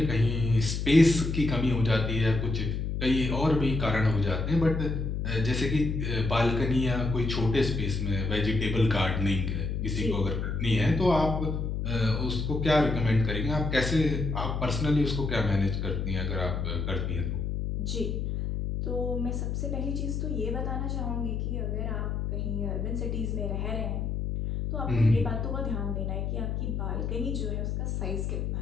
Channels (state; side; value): noise; left; hum, 1 dB below the sound